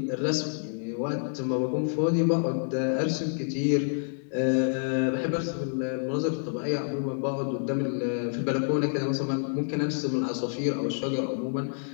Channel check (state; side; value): silent; right; 59 dB below the other